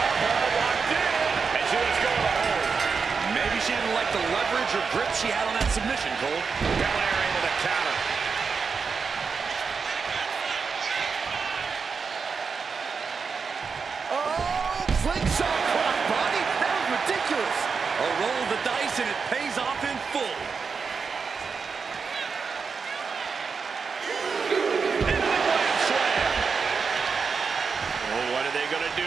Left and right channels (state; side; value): quieter; left; 5.3 dB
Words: Locked in. And she was going to hold. Maybe she didn't like the leverage or grip she had on that submission, Cole. Belair able to counter. Oh, slingshot cross body. That was ridiculous. A roll of the dice and it pays off in full. Oh, what are they going to do?